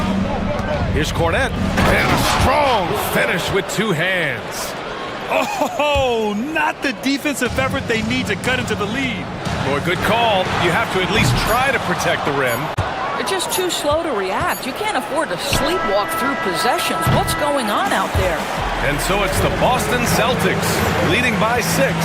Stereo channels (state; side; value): identical; both; correlation 1.00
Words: Here's Cornette. And a strong finish with 2 hands. Oh, not the defensive effort they need to cut into the lead. Boy, good call. You have to at least try to protect the rim. They're just too slow to react. You can't afford to sleepwalk through possessions. What's going on out there? And so it's the Boston Celtics leading by 6